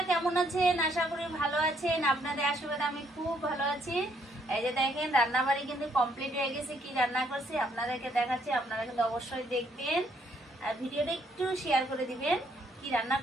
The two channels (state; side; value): normal; both; correlation 0.70